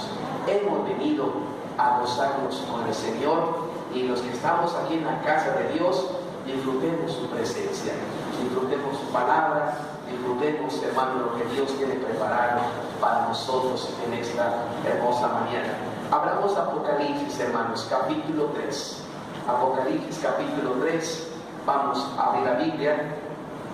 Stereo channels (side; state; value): both; identical; correlation 1.00